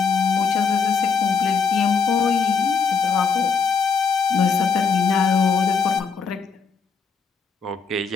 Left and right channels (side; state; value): right; quieter; 5.6 dB